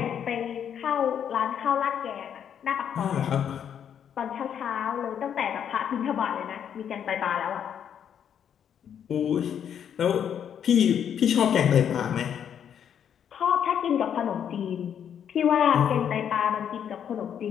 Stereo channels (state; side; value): quieter; right; 8.7 dB